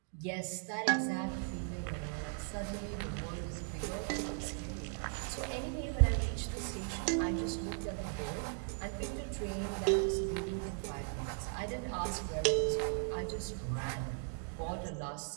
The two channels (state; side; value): silent; left; 53 dB below the other